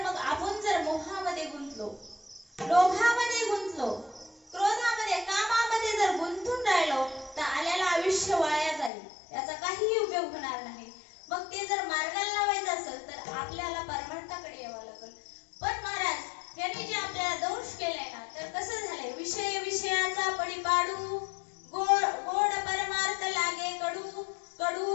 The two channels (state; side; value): drops out; right; at 8.9 s